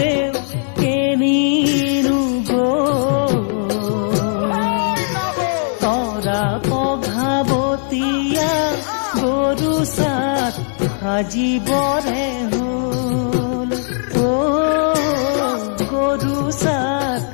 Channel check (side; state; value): right; silent; 67 dB below the other